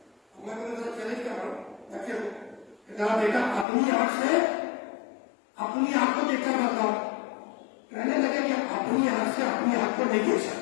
میں تمہیں ذرا چیلنج کر رہا ہوں، بچے کو ذرا بیٹا اپنی آنکھ سے اپنی آنکھ کو دیکھ کر بتاؤ۔ کہنے لگے کہ اپنی آنکھ سے اپنی آنکھ کو نہیں دیکھ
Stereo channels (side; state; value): right; drops out; at 3.7 s